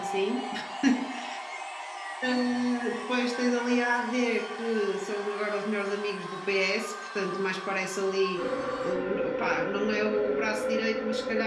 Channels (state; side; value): identical; both; correlation 1.00